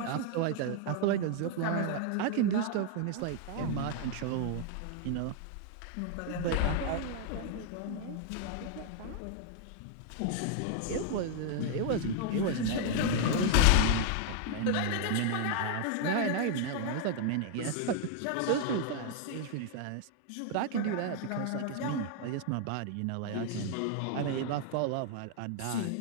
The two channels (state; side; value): different; both; correlation 0.00